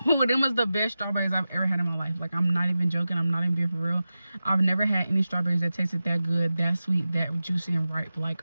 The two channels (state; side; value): inverted; both; correlation -0.94